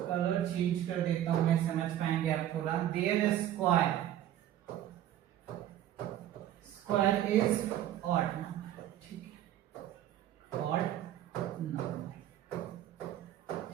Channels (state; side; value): quieter; left; 12.0 dB